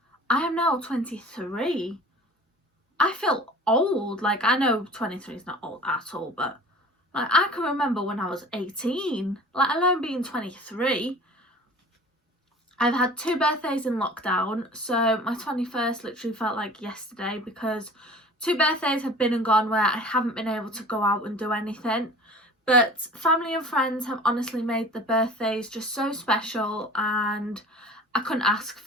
I am now 23. I feel old. Like, I know 23 is not old at all, but like, I can remember when I was 18, let alone being 23. I've had 2 birthdays in lockdown, so my 21st literally felt like yesterday because 2 birthdays have been and gone where I haven't been able to go out and do anything. But family and friends have honestly made the birthdays just so special, and I couldn't ask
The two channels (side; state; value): both; normal; correlation 0.43